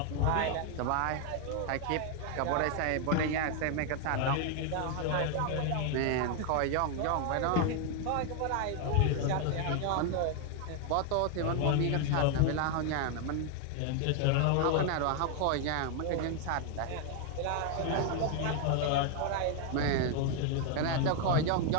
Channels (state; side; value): different; both; correlation 0.00